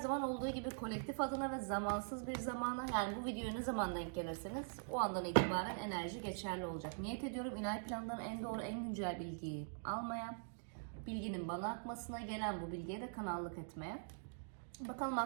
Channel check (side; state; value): left; silent; digital silence